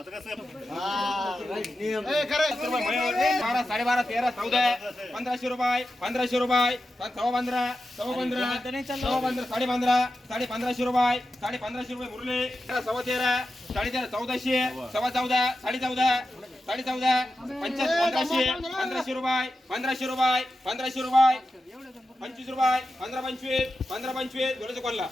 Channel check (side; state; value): both; normal; correlation 0.91